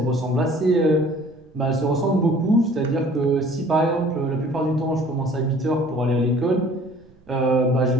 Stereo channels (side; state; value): right; noise; rumble, 30 dB below the sound